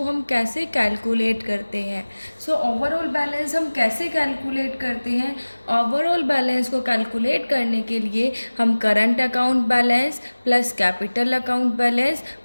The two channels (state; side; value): inverted; both; correlation -1.00